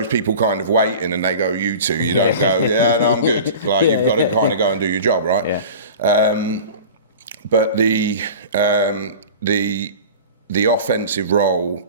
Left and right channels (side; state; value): both; inverted; correlation -0.37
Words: people kind of waiting, and they go, "You two," you don't go, "Yeah, no, I'm good." Like you've got to kind of go and do your job, right? Yeah. But the offensive role,